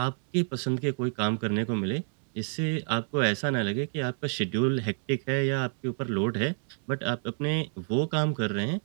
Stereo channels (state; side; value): silent; left; digital silence